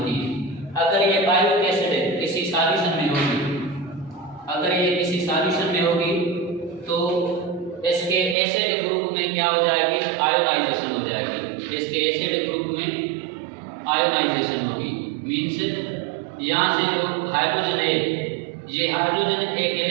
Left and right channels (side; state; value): left; drops out; at 8.3 s